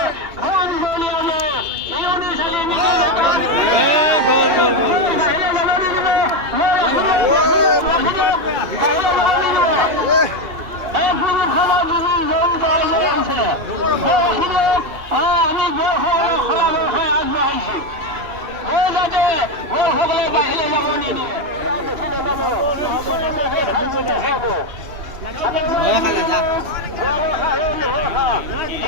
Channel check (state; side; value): late; left; 2.8 ms